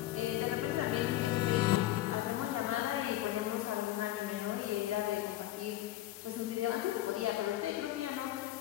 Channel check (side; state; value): right; quieter; 14.7 dB